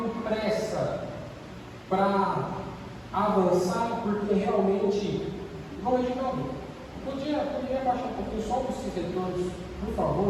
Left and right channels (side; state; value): both; identical; correlation 1.00